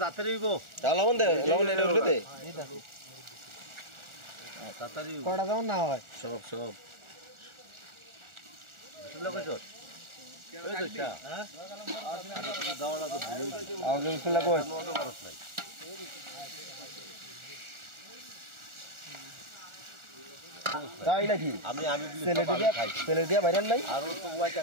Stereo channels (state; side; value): late; left; 1.4 ms